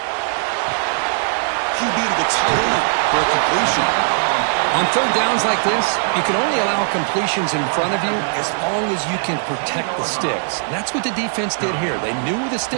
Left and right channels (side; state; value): left; silent; digital silence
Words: QB to the tight end for a completion. On third downs like this, you can only allow completions in front of you as long as you can protect the sticks. And that's what the defense did here. They knew where the